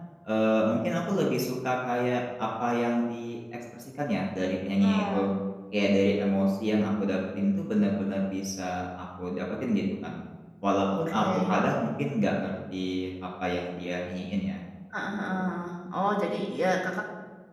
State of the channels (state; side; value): identical; both; correlation 1.00